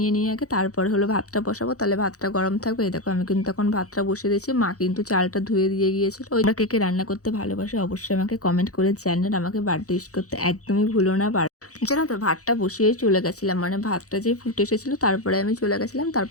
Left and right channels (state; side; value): late; right; 0.66 ms